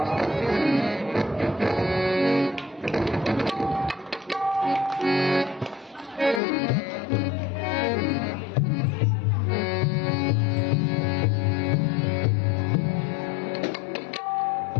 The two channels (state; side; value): drops out; right; at 6.4 s